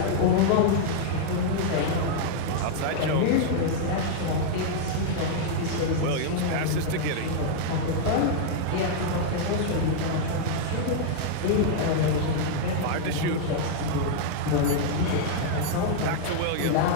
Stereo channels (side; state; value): both; different; correlation -0.01